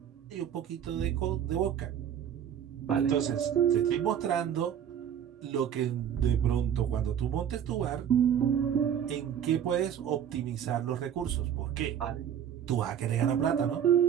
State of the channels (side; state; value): left; quieter; 9.2 dB